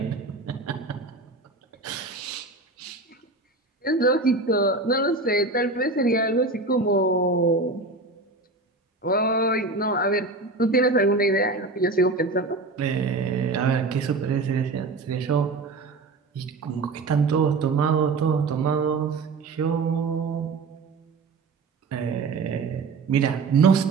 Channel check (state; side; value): quieter; left; 3.6 dB